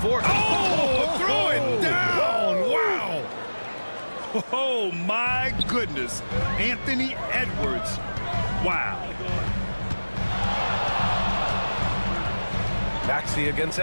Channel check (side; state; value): both; inverted; correlation -1.00